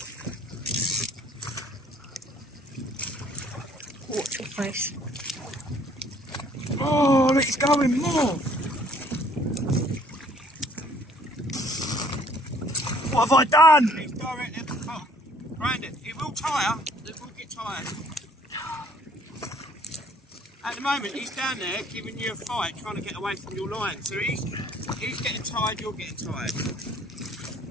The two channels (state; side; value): normal; both; correlation 0.60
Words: Watch your face. Oh, look, he's going more. What have I done? He's directly at the top. Brandon, it will tire. It will get tired. At the moment, he's down there giving you a fight, trying to get away from your line. So he's getting tired, you're getting tired.